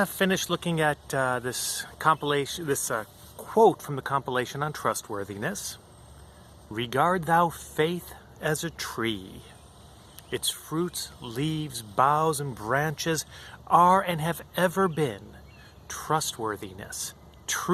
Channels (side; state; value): both; identical; correlation 1.00